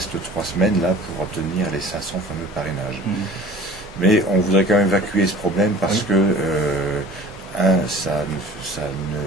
3 semaines là pour obtenir les 500 fameux parrainages. Mais on voudrait quand même évacuer ce problème parce que, ça nous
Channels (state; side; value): normal; both; correlation 0.45